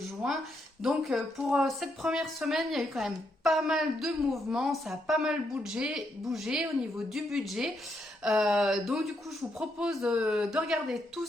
Donc pour cette première semaine, il y a eu quand même pas mal de mouvements, ça a pas mal bougé au niveau du budget. Donc du coup, je vous propose de regarder tout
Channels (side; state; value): both; normal; correlation 0.78